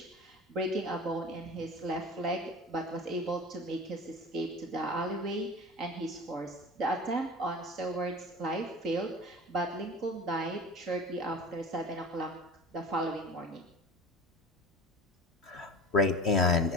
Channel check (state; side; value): normal; both; correlation 0.35